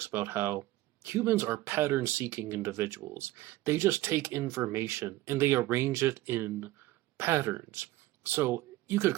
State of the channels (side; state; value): left; quieter; 17.1 dB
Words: about how humans are pattern-seeking individuals. They just take information and they arrange it in patterns. So you could